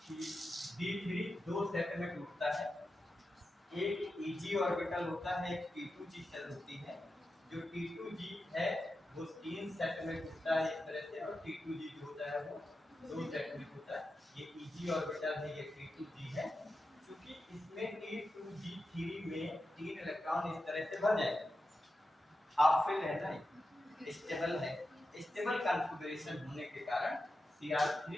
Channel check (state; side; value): normal; both; correlation 0.90